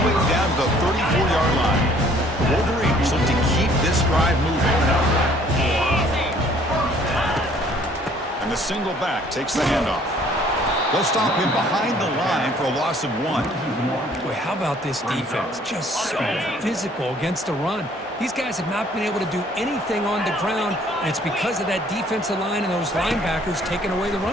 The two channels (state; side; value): normal; both; correlation 0.59